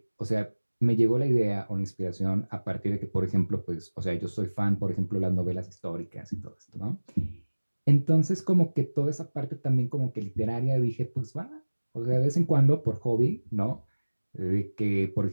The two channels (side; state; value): both; inverted; correlation -1.00